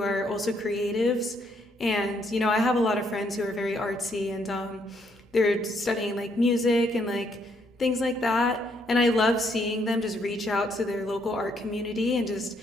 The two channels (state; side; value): normal; both; correlation 0.72